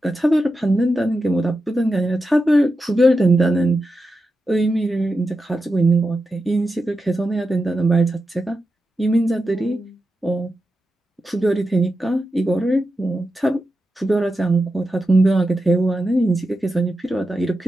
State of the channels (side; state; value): both; normal; correlation 0.89